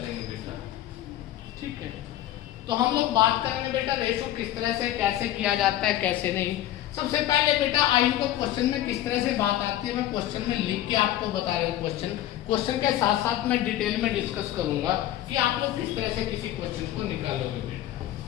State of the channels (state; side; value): quieter; right; 13.4 dB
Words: बेटा। ठीक है, तो हम लोग बात करेंगे बेटा रेशो किस तरह से कैसे किया जाता है कैसे नहीं। सबसे पहले बेटा आयु को क्वेश्चन में किस तरह से बात आती है, मैं क्वेश्चन में लिख के आपको बता रहा हूँ। क्वेश्चन के साथ साथ मैं डिटेल में डिस्कस करूंगा कि आप लोग किस तरह से किसी क्वेश्चन को निकालोगे बेटा।